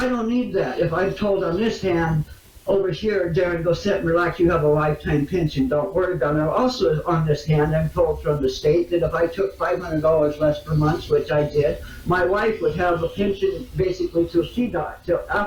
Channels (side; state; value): both; identical; correlation 1.00